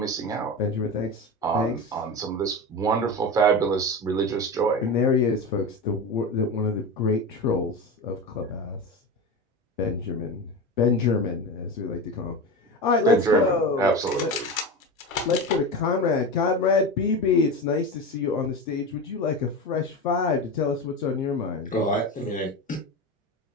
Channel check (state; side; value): normal; both; correlation 0.24